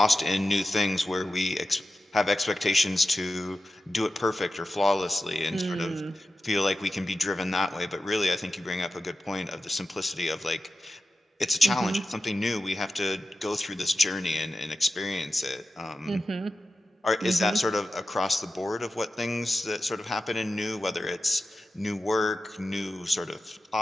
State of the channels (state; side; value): normal; both; correlation 0.92